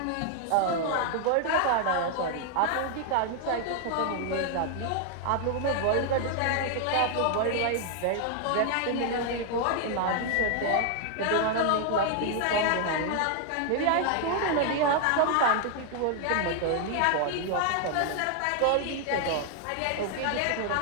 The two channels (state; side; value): different; both; correlation 0.00